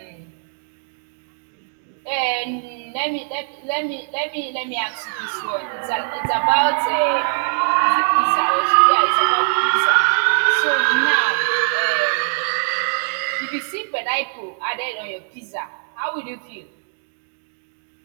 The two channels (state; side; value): silent; left; digital silence